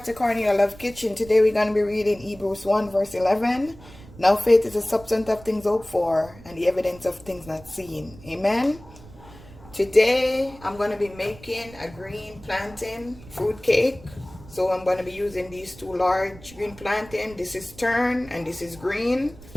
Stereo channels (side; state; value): right; noise; rumble, 20 dB below the sound